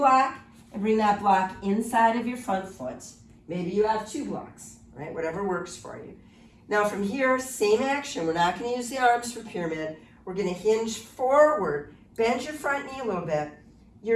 and bring that block inside of your front foot. Maybe you have 2 blocks, right? Whatever works for you. Now from here, same action. We're not going to use the arms for pyramid. We're going to hinge forward. Bend your front knee a little bit.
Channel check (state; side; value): identical; both; correlation 1.00